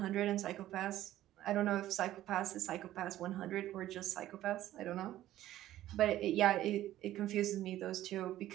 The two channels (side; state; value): left; quieter; 13.8 dB